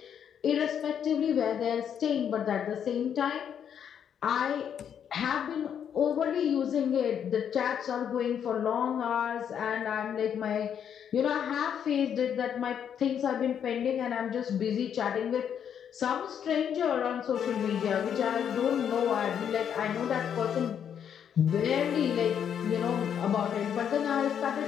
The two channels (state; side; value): quieter; right; 8.5 dB